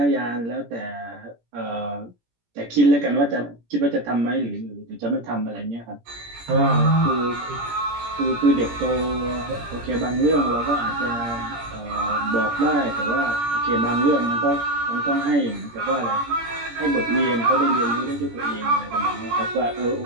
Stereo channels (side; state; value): left; late; 17 ms